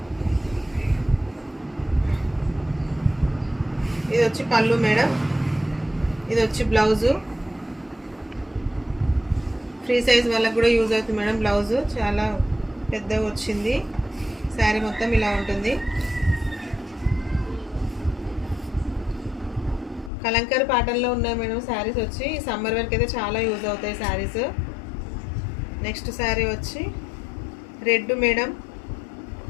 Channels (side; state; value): right; drops out; at 20.1 s